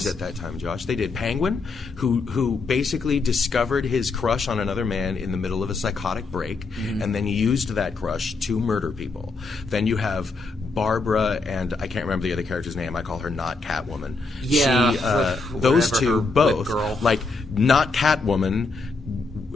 at that time, Josh. They did Penguin, who basically discovered his crush on another man in the middle of a psychotic break, and then used that crush to murder people. Then you have Barbara, and I can't remember the other character's name. I call her not Catwoman. Yeah, those two both, not Catwoman,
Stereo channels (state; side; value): quieter; right; 3.8 dB